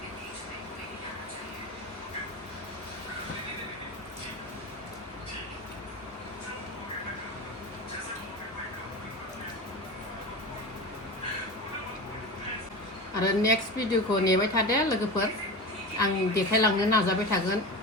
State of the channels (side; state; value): both; normal; correlation 0.27